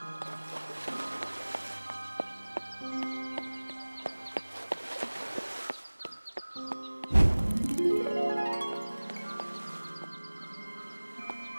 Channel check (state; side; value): inverted; both; correlation -1.00